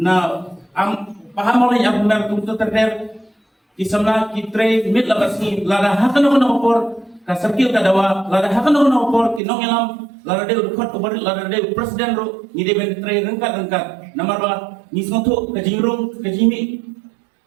paham oleh akmer kuntu terder ki samna ki tre mit labasni lada hakano kono por ka sarkil ka dawa lada hakano kono por ki nongelam lada de khot ko bari lada de presiden ro ni de ben tre rengkat namar ba ni snotu ka jingrung ka jimi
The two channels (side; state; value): left; drops out; at 9.4 s